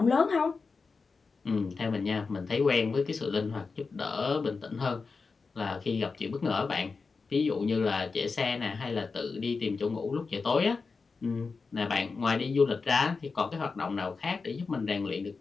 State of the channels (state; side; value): quieter; right; 4.6 dB